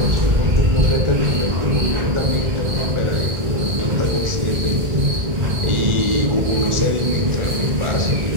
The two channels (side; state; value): left; late; 1.4 ms